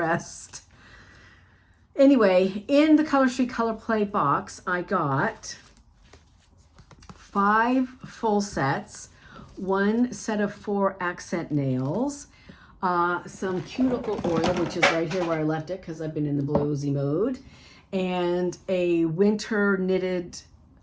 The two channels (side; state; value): both; identical; correlation 1.00